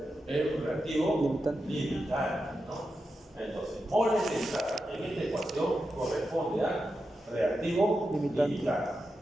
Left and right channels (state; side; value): normal; both; correlation 0.89